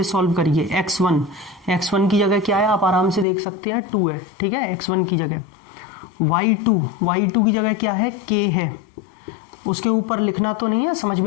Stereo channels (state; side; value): drops out; right; at 3.2 s